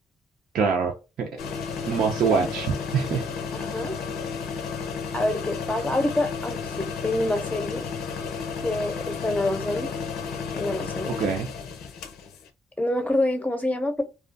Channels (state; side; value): normal; both; correlation 0.69